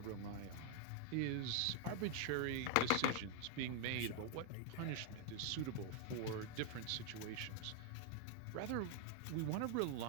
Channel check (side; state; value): both; different; correlation 0.00